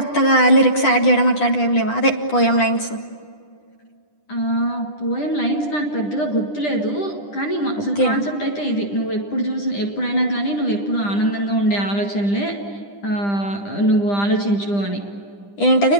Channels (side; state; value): right; late; 10 ms